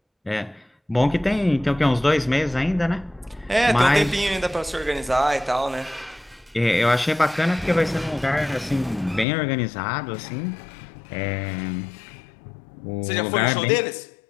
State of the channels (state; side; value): drops out; right; at 9.2 s